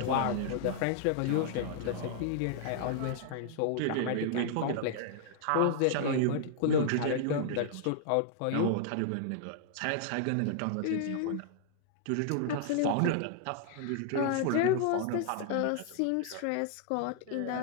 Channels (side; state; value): both; different; correlation -0.01